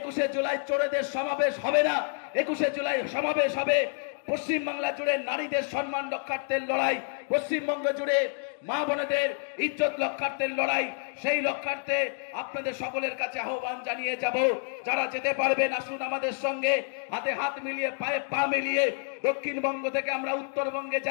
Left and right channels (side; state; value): right; silent; 59 dB below the other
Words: জুলাই চোরেদের সমাবেশ হবে না, 21শে জুলাই সমাবেশ হবে পশ্চিমবাংলা জুড়ে নারীদের সম্মান রক্ষার্থের লড়াই, পশ্চিমবঙ্গ জুড়ে মা বোনেদের ইজ্জত রক্ষার্থের লড়াই। সেই রক্ষার্থে আপনাদের সকলের কাছে আহ্বান জানিয়ে যাব, যারা যেতে পারবেন আসুন আমাদের সঙ্গে, হাতে হাত মিলিয়ে পায়ে পা মিলিয়ে দক্ষিণবঙ্গ থেকে আমরা উত্তরবঙ্গে